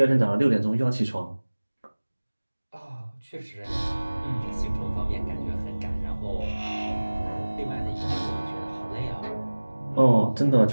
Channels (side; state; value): both; inverted; correlation -1.00